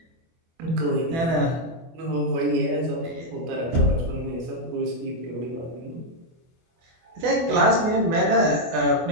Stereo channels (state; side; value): late; left; 24 ms